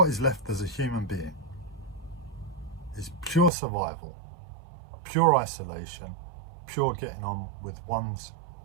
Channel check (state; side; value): drops out; left; at 3.5 s